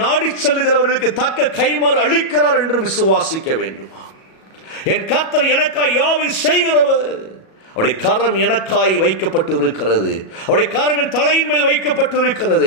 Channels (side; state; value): right; late; 37 ms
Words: நாடி செல்லுகிறவர்களுக்கு தக்க கைமாறு அளிக்கிறார் என்று விசுவாசிக்க வேண்டுமா? என் கர்த்தர் எனக்காய் யாவை செய்கிறவர். அவருடைய கரம் எனக்காய் வைக்கப்பட்டு இருக்கிறது. அவருடைய கரம் என் தலையின் மேல் வைக்கப்பட்டு